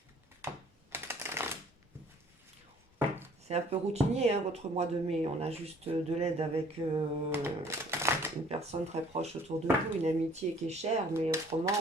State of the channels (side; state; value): both; normal; correlation 0.56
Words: C'est un peu routinier, hein, votre mois de mai. On a juste de l'aide avec une personne très proche autour de vous, une amitié qui est chère, mais